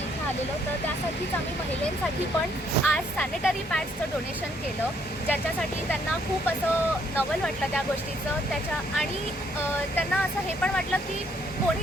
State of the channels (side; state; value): both; normal; correlation 0.68